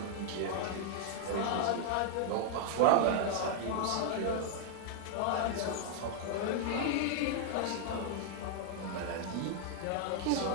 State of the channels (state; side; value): different; both; correlation -0.01